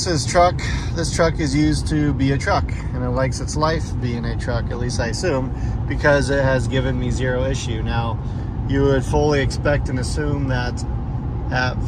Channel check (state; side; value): identical; both; correlation 1.00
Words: truck is used to be a truck, and it likes its life being a truck, at least I assume, because it has given me zero issue. Now, you would fully expect and assume that at